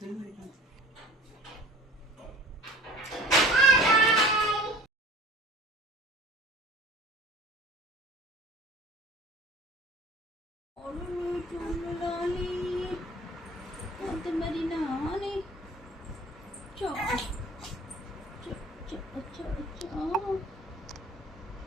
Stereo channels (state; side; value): normal; both; correlation 0.44